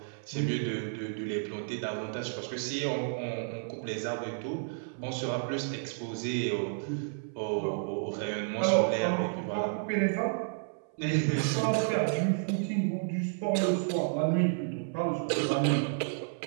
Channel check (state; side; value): silent; left; 57 dB below the other